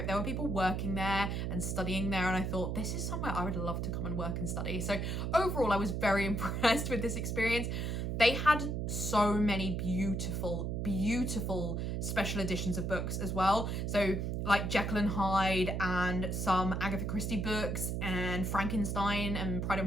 there were people working there and studying there, and I thought, this is somewhere I would love to come and work and study. So overall, I was very impressed with this experience. They had so many beautiful special editions of books as well. So like Jekyll and Hyde and some Agatha Christie books and Frankenstein and Pride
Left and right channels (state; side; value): noise; right; hum, 1 dB below the sound